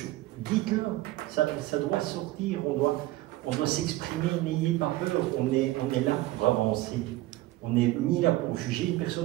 dites-le, ça doit sortir, on doit s'exprimer, n'ayez pas peur, on est là pour avancer. On n'est ni là pour juger une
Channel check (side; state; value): left; quieter; 17.4 dB